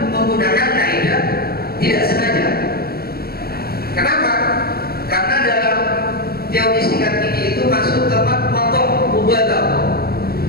menggunakan kaidah tidak sengaja. Kenapa? Karena dalam teori sikat gigi itu masuk tempat motor mubadah,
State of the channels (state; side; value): late; right; 0.45 ms